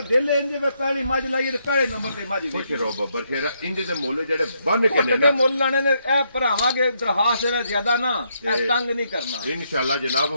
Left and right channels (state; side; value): inverted; both; correlation -0.76